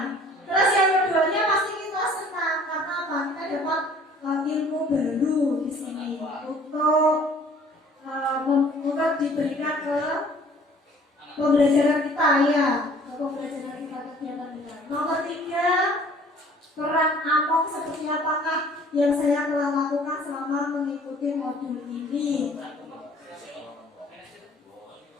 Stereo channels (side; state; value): both; normal; correlation 0.53